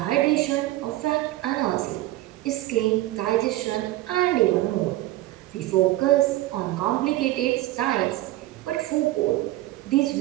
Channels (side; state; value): left; quieter; 16.5 dB